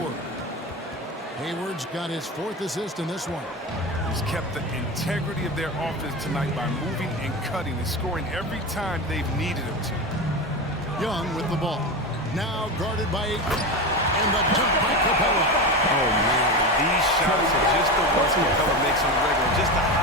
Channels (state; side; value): normal; both; correlation 0.21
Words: Hayward's got his 4th assist in this one. He's kept the integrity of their offense tonight by moving and cutting and scoring every time they've needed him to. Young with the ball. Now guarded by Ayton. And the dunk by Capella. Oh, man. These shots are just the ones Capella makes on the regular. Just a